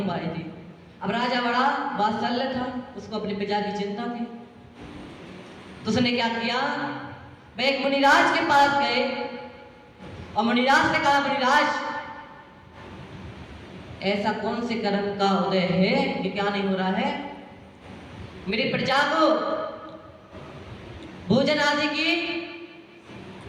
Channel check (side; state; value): both; identical; correlation 1.00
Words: पाई थी। अब राजा बड़ा वात्सल्य था, उसको अपने प्रजा की चिंता थी। तो उसने क्या किया? वह एक मुनिराज के पास गए और मुनिराज ने कहा, मुनिराज ऐसा कौन से कर्म का उदय है कि क्या नहीं हो रहा है? मेरी प्रजा को भोजन आदि की